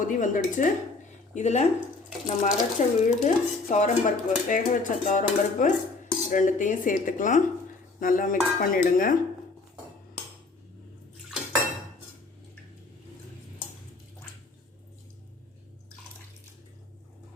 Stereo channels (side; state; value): right; quieter; 3.6 dB